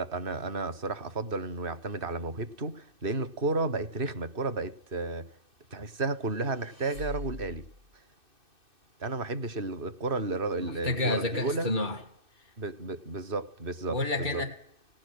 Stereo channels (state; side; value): late; left; 2.6 ms